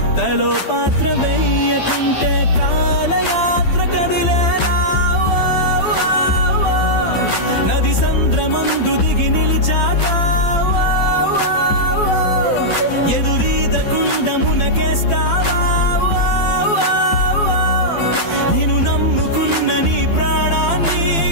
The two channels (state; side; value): late; right; 12 ms